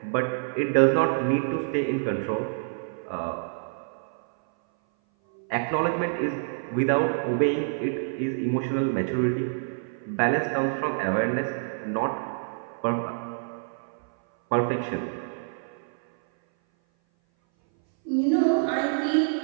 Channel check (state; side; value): silent; left; 57 dB below the other